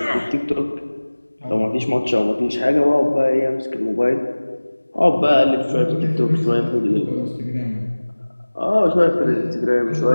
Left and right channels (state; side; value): inverted; both; correlation -1.00